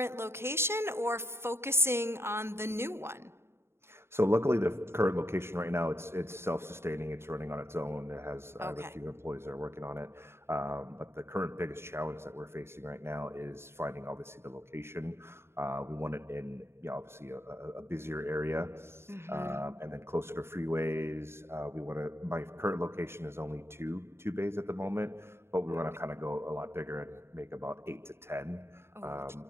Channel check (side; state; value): left; late; 0.12 ms